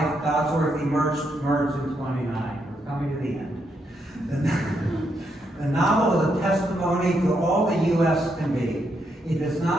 Dodsworth emerged in 29. We're coming to the end. The novel is a testimony to all the U.S. can be. It is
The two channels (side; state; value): both; normal; correlation 0.79